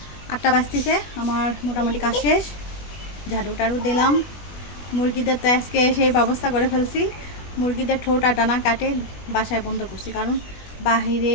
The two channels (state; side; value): late; right; 21 ms